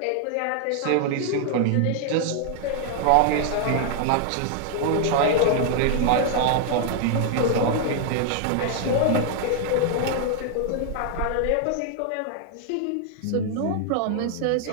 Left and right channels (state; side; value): different; both; correlation 0.00